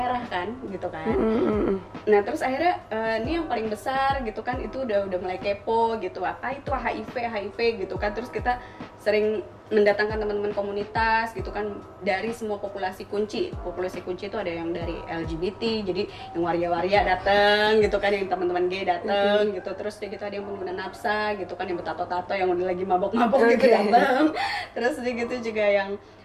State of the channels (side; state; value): both; identical; correlation 1.00